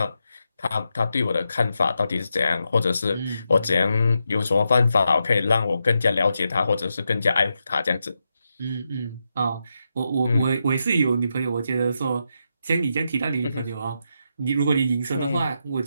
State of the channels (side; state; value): both; inverted; correlation -0.85